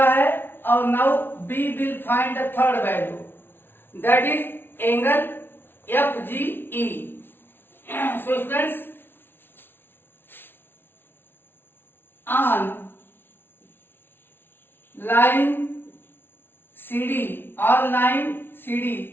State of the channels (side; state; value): right; late; 0.11 ms